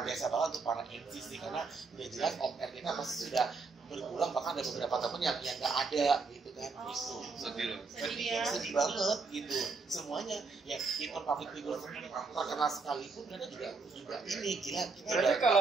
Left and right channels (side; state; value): left; quieter; 4.3 dB